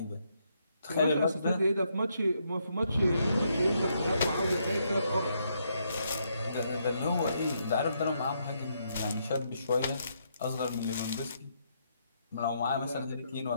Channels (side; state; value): both; inverted; correlation -0.76